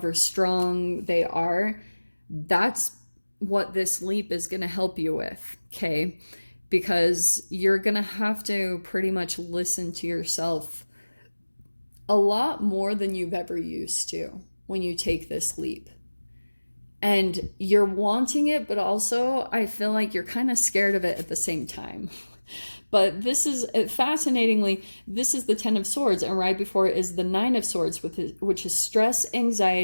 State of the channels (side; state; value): both; inverted; correlation -1.00